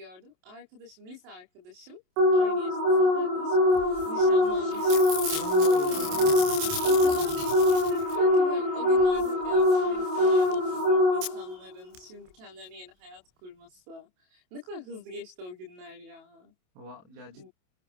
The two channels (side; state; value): left; late; 27 ms